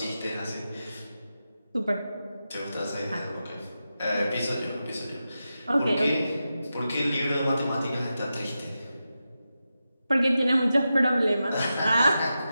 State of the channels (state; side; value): inverted; both; correlation -0.90